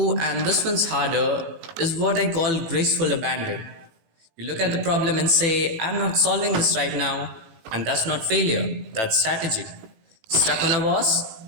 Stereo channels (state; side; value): late; left; 18 ms